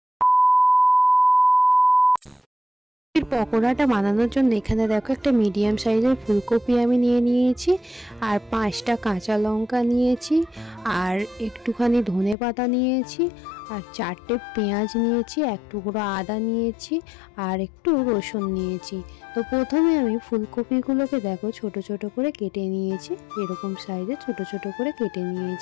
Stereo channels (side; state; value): right; drops out; at 12.4 s